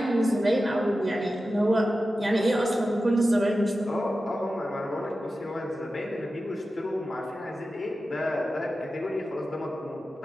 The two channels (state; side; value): normal; both; correlation 0.93